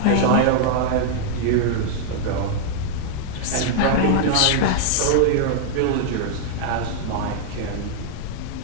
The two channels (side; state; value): both; different; correlation -0.01